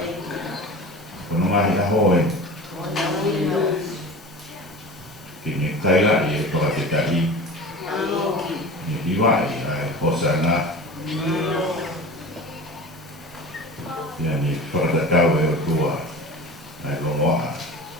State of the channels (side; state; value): both; normal; correlation 0.35